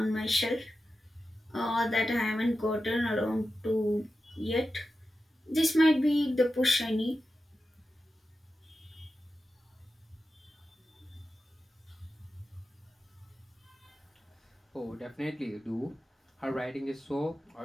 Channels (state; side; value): normal; both; correlation 0.92